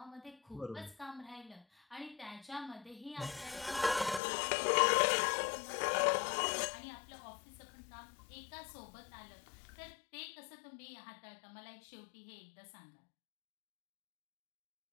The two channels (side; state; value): right; drops out; at 4.2 s